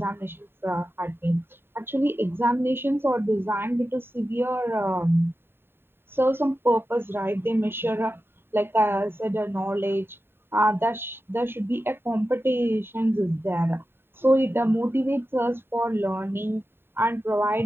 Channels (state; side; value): late; left; 0.11 ms